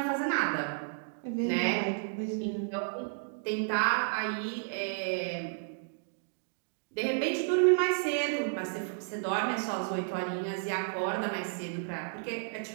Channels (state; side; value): silent; left; digital silence